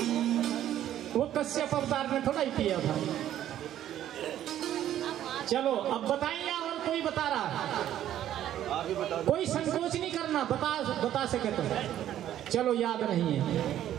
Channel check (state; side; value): quieter; left; 11.8 dB